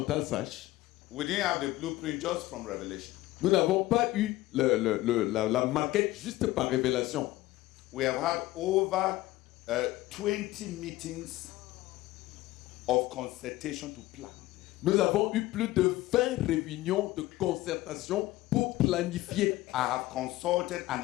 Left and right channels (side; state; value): right; quieter; 17.3 dB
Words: sache, We didn't have the blueprint just from Revelation. nous n'avons pas eu la maquette juste par révélation. We have had over 20 meetings of consultation to plan. Nous avons eu plus de 20 réunions de concertation pour planifier. I have consulted an